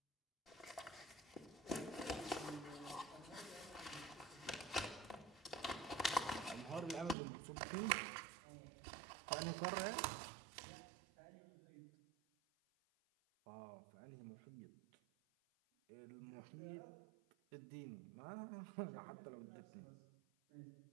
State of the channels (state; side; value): drops out; left; at 7.2 s